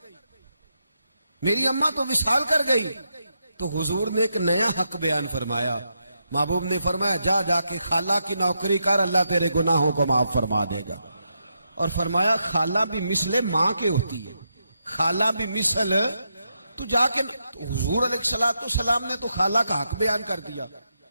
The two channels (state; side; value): inverted; both; correlation -0.83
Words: میری اماں تو وصال کر گئی۔ تو حضور نے ایک نیا حق بیان فرمایا، محبوب نے فرمایا جا کے خالہ کی نوکری کر، اللہ تیرے گناہوں کو معاف فرما دے گا۔ اور فرمایا خالہ بھی مثل ماں کے ہوتی ہے، خالہ بھی مثل، تو جا کے حضور علیہ السلام نے تو خالہ کا حق بیان کر دیا،